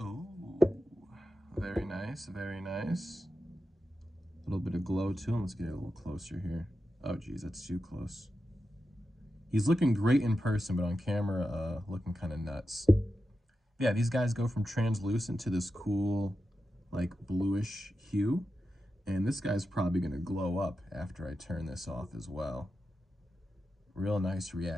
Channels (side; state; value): both; normal; correlation 0.90